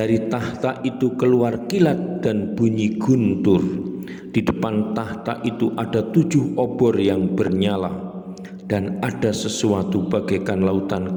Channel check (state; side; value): identical; both; correlation 1.00